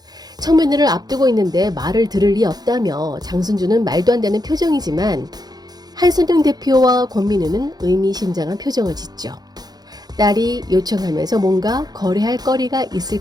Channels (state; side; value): late; left; 0.19 ms